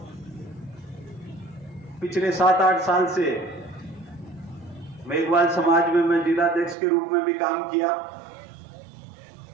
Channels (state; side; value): drops out; left; at 6.8 s